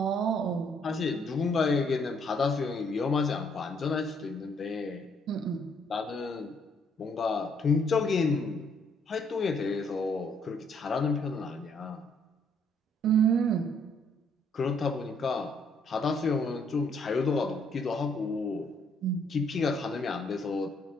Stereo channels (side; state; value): both; normal; correlation 0.68